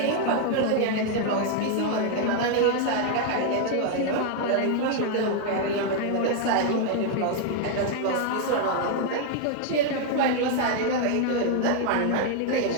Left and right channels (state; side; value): different; both; correlation 0.00